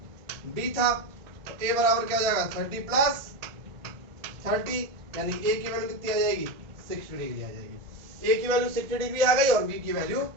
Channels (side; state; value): left; late; 1.5 ms